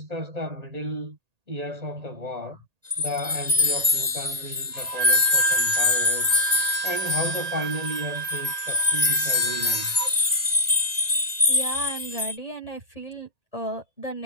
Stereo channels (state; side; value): late; left; 1.8 ms